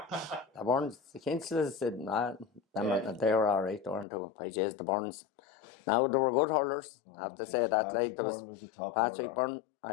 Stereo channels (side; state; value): right; drops out; at 4.0 s